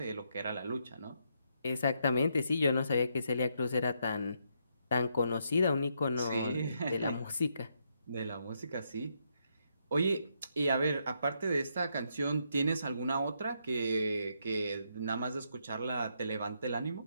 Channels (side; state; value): both; inverted; correlation -0.77